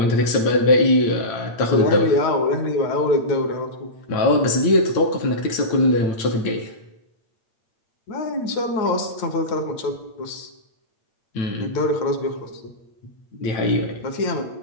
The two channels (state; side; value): late; right; 8.8 ms